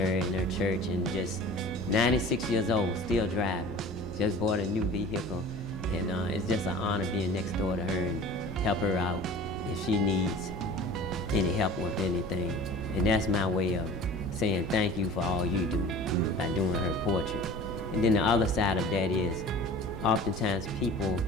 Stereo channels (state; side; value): normal; both; correlation 0.41